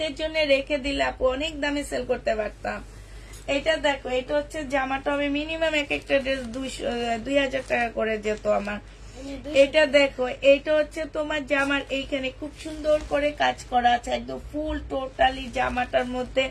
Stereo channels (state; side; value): identical; both; correlation 1.00